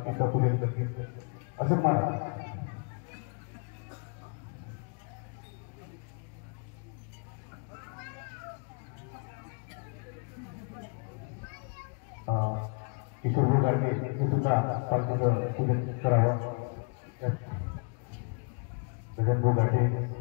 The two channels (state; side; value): quieter; right; 39.1 dB